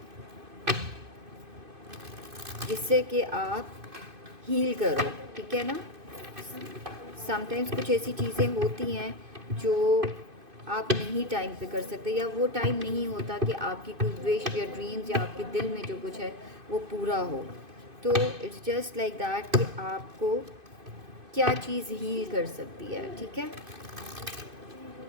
जिससे कि आप हील करो, ठीक है ना. समटाइम्स कुछ ऐसी चीज़ें होती हैं जो आप नहीं टाइम पे कर सकते, या वो टाइम नहीं होता कि आपकी कोई विश या ड्रीम्स या आपके दिल में जो कुछ है वो पूरा हो. तो इट्स जस्ट लाइक दैट कि आपको क्या चीज़ हील कर सकती है, ठीक है.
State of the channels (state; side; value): late; left; 2.5 ms